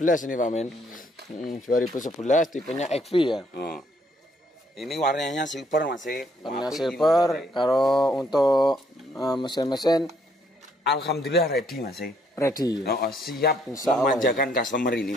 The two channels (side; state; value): both; normal; correlation 0.68